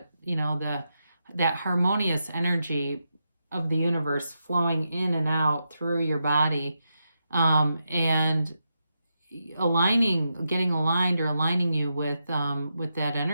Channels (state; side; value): inverted; both; correlation -0.86